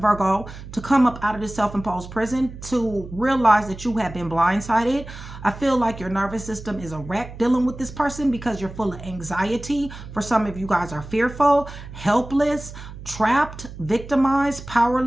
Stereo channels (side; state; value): right; noise; hum, 13 dB below the sound